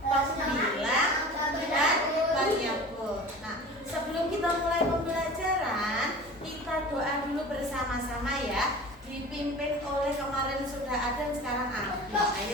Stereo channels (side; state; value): both; normal; correlation 0.38